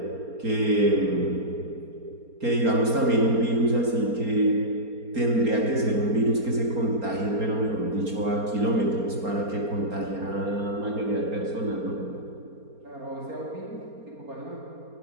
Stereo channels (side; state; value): left; late; 4.3 ms